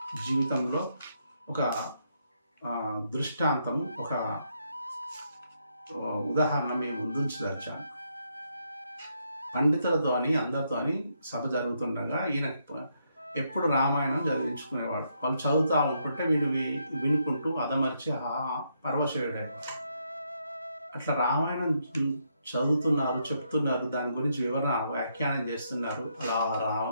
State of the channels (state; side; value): inverted; both; correlation -0.77